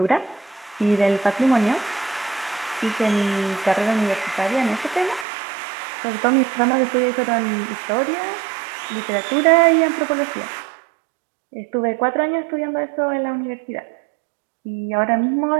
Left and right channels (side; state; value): left; drops out; at 5.2 s